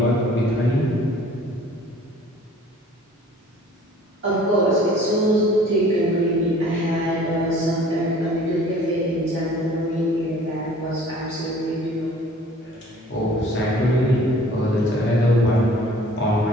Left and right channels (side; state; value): both; normal; correlation 0.51